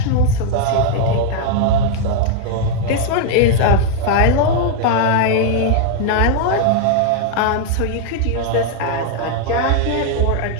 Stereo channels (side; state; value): both; different; correlation 0.00